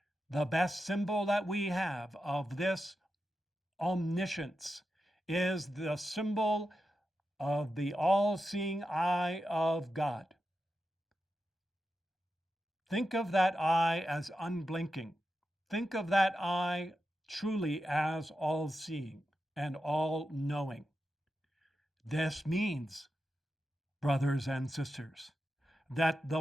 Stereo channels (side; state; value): both; normal; correlation 0.89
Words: The best symbol that we have of this omniscience is the symbol of the all-seeing eye of God. Think of that eye as unblinking. Think of that eye truly as all-seeing and all-knowing. This means, brothers and sisters, that